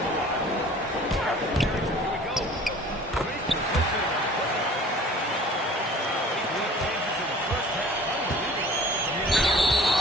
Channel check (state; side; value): normal; both; correlation 0.47